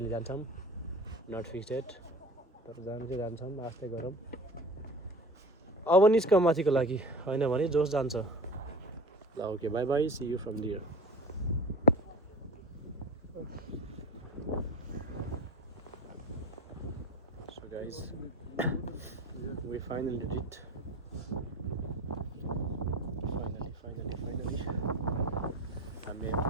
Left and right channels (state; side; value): normal; both; correlation 0.34